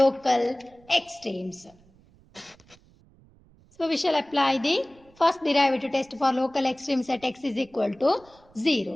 extremes. So we shall apply the first derivative test for local extremes at x is equal to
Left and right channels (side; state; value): right; noise; rumble, 29 dB below the sound